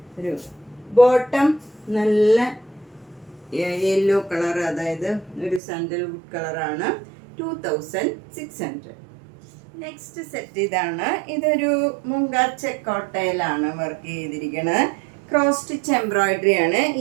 ഒരു ബോട്ടം നല്ല യെല്ലോ കളർ, അതായത് ഒരു സാൻഡൽവുഡ് കളറാണ്. 2600. നെക്സ്റ്റ് സെറ്റ് ഇതാണ്. ഇതൊരു മുങ്കാച്ച കോട്ടയിലാണ് വർക്ക് ചെയ്തിരിക്കുന്നത്. ക്രോസ് സ്റ്റിച്ച് എംബ്രോയിഡറി ആണ്.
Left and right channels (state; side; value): drops out; left; at 5.6 s